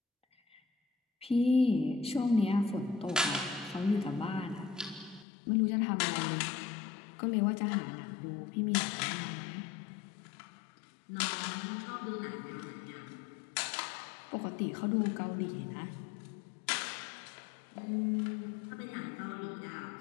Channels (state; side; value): drops out; right; at 5.2 s